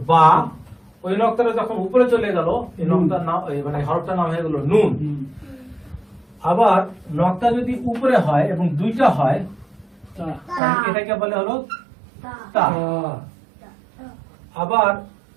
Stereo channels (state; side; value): drops out; left; at 10.6 s